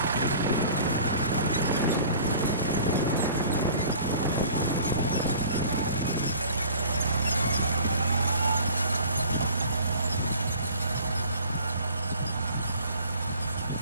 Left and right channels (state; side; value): inverted; both; correlation -0.47